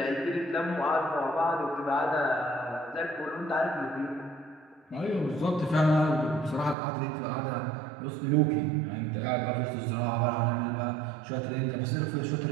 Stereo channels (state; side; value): drops out; left; at 6.8 s